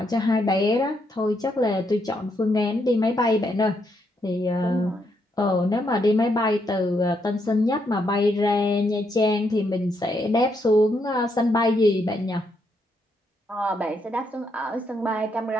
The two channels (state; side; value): normal; both; correlation 0.77